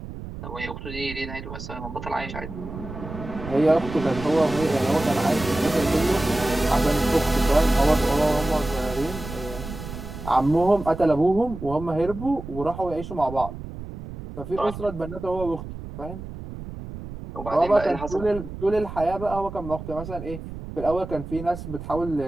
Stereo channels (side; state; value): right; noise; rumble, 11 dB below the sound